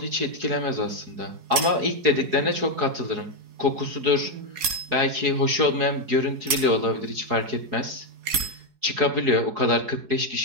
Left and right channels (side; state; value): left; late; 4.7 ms